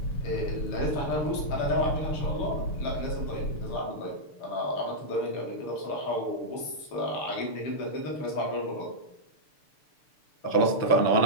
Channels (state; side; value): late; right; 6.8 ms